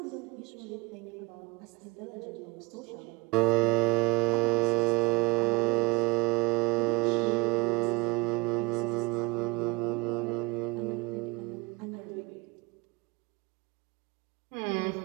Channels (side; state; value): left; quieter; 25.5 dB